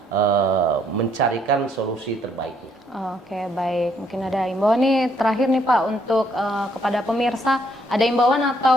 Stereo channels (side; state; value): both; normal; correlation 0.69